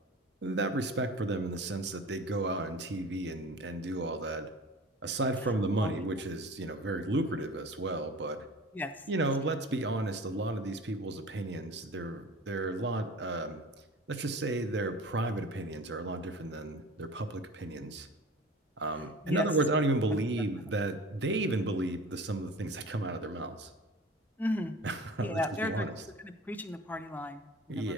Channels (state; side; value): normal; both; correlation 0.39